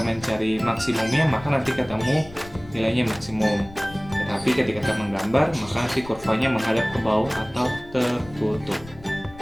mencari maksimumnya, maka nanti ketemu nilainya maksimum. Tetapi ketika kita menggambar, maka nanti kurvanya menghadap ke bawah atau tertutup.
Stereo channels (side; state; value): left; noise; rumble, 18 dB below the sound